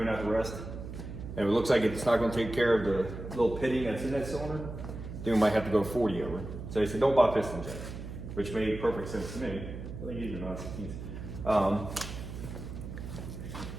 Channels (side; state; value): right; noise; hum, 9 dB below the sound